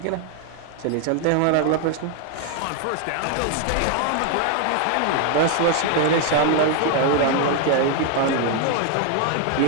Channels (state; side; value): different; both; correlation 0.01